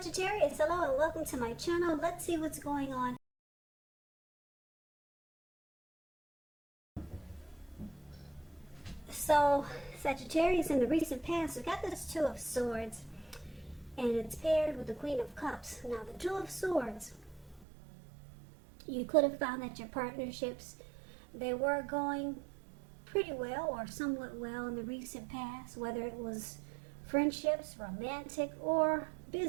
hello and welcome to my channel. Let's see what's going on. So, Sagittarius, in the recent past, we got this Two of Swords, and it's paired with the Queen of Cups. Now, the Two of Swords, you could have found that your partnerships, they were going pretty well or somewhat well in the recent past, whether it was friendships, romantic, or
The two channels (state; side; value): drops out; left; at 17.7 s